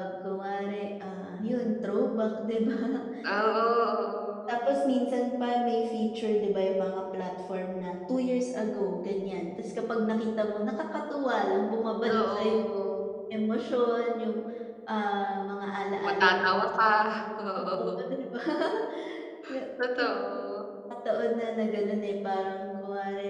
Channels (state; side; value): identical; both; correlation 1.00